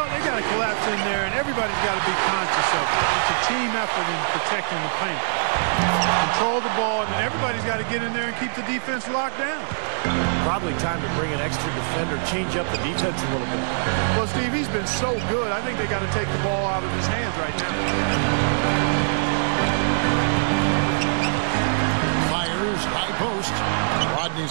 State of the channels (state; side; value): silent; left; digital silence